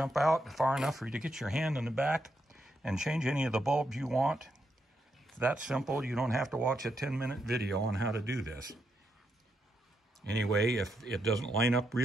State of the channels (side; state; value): both; normal; correlation 0.81